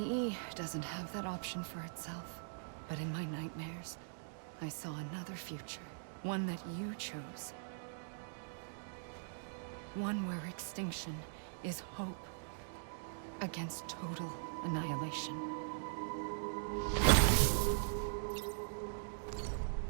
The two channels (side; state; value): left; silent; digital silence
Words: doesn't have that option for itself. But in my nightmares, I saw another future. One that you chose. One where extinction is hope against total annihilation.